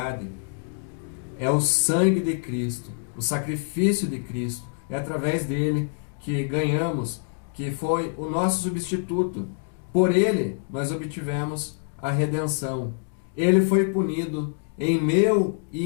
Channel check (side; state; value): right; silent; digital silence